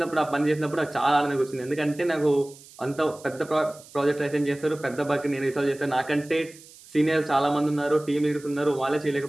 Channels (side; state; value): right; noise; hiss, 22 dB below the sound